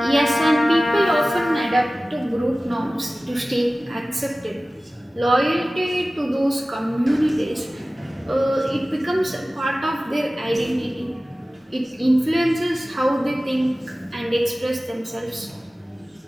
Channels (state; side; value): normal; both; correlation 0.97